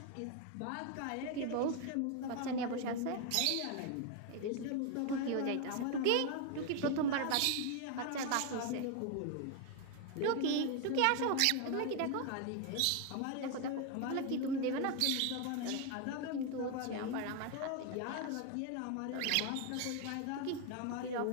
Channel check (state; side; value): different; both; correlation 0.01